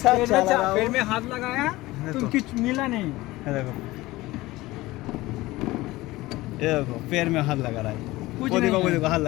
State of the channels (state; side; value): quieter; right; 18.9 dB